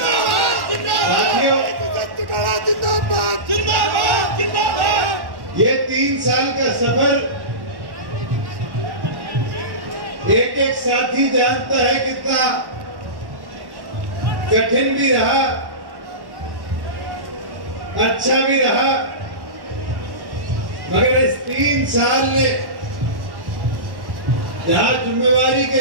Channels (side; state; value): left; late; 1.1 ms